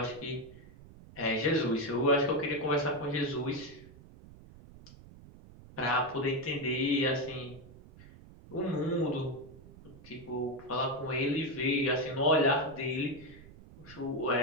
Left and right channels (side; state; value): right; noise; rumble, 20 dB below the sound